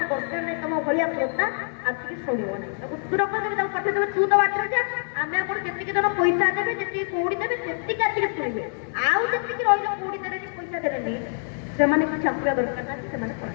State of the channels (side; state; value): right; silent; digital silence